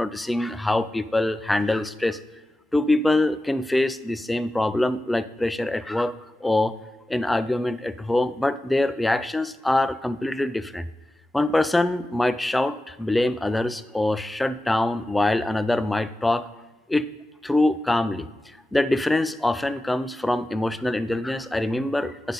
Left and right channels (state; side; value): normal; both; correlation 0.93